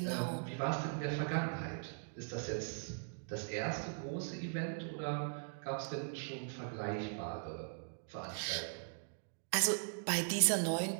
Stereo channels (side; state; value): left; silent; digital silence